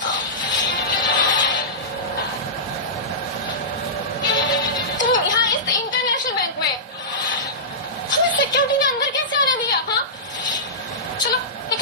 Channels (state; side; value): normal; both; correlation -0.16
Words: तुम यहाँ इस इंटरनेशनल बैंक में हमें सिक्योरिटी ने अंदर कैसे आने दिया? हाँ, चलो